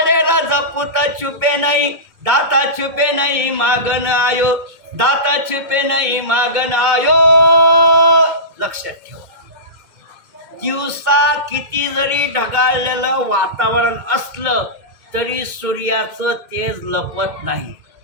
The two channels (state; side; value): late; left; 2.1 ms